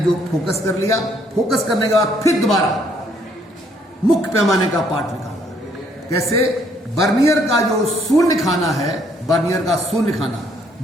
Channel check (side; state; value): both; normal; correlation 0.67